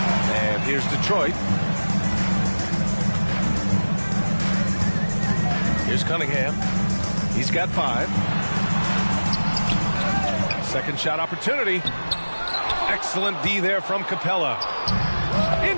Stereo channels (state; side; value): inverted; both; correlation -1.00